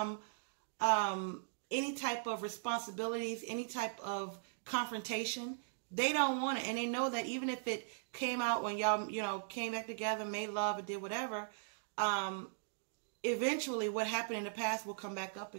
any type of responsibilities, any type of confrontation. They don't want it. And they know that even if it came out when y'all, you know, came back together, made love, or did whatever, eventually what happened in the past will come back up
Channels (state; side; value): silent; left; digital silence